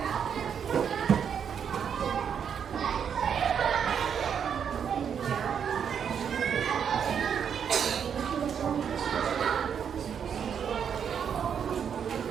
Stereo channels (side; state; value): left; quieter; 7.7 dB